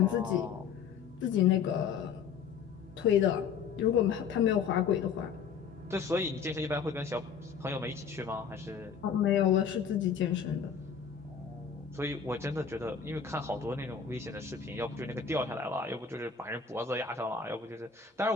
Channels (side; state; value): right; quieter; 6.7 dB